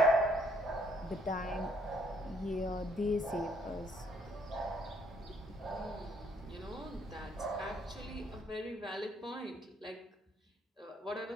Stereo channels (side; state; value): both; normal; correlation 0.67